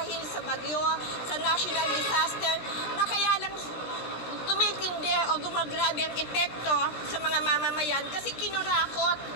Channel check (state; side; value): late; right; 16 ms